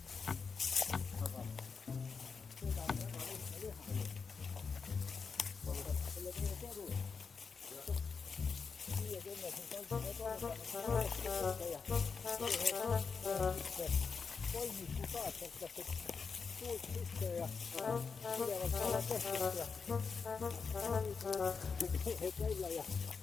Aga seda on väga lihtne teha. Selle teile kodu. 50 kolmiku kaasartasid puud sisse ja pidevalt alla tehtud ja et välja ja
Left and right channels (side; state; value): right; quieter; 5.3 dB